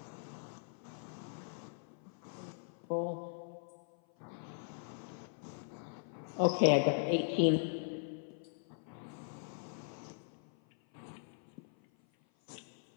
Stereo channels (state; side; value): silent; right; 51 dB below the other